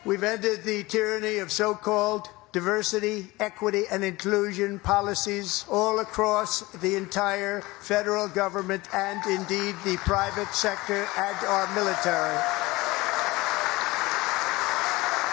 We've ended the tyranny of so-called diversity, equity, and inclusion policies all across the entire federal government and indeed the private sector and our military.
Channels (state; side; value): quieter; right; 21.1 dB